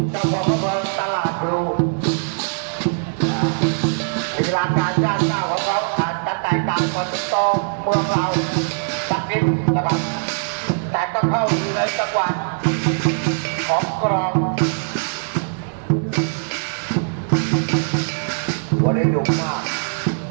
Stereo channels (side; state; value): left; silent; digital silence